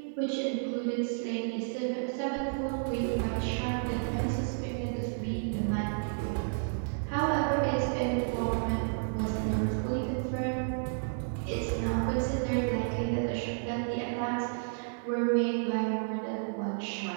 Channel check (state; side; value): silent; left; digital silence